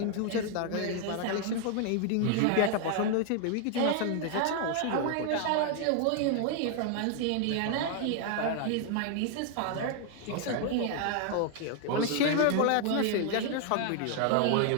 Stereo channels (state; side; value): different; both; correlation 0.00